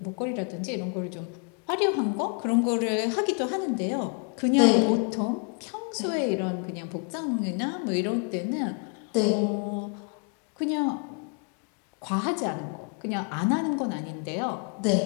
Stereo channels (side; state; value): right; quieter; 37.0 dB